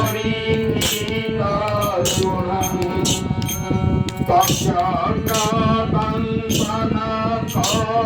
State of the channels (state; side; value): identical; both; correlation 1.00